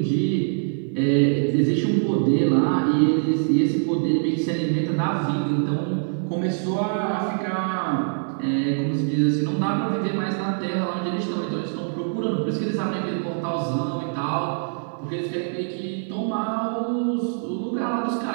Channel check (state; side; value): silent; left; digital silence